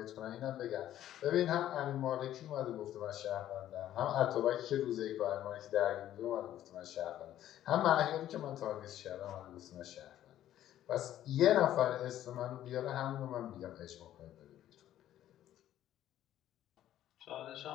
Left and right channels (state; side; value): quieter; right; 12.3 dB